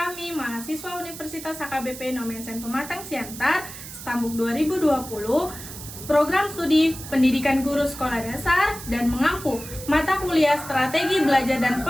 mahasiswa Universitas HKBP Nomensen Pematang Siantar, Stambuk 2020, program studi Pendidikan Guru Sekolah Dasar dan mengampu mata kuliah Strategi Belajar dan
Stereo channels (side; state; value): right; noise; hiss, 12 dB below the sound